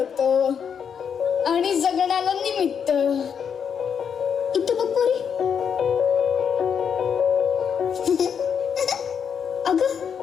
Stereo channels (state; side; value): quieter; right; 7.3 dB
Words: आणि जगण्याला निमित्त. इथं बघ पोरी. अगं,